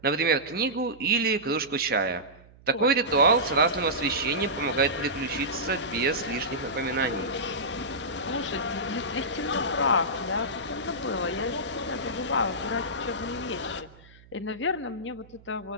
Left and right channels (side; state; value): right; noise; hum, 24 dB below the sound